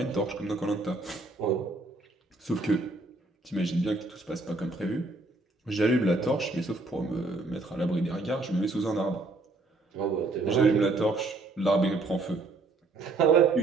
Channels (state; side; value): quieter; left; 3.3 dB